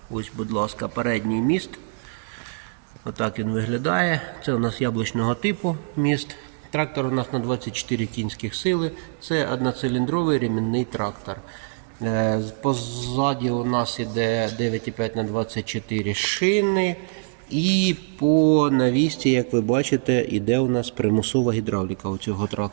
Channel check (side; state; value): left; silent; digital silence